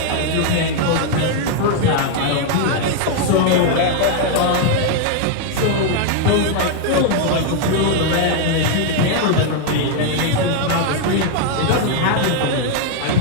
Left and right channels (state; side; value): different; both; correlation 0.00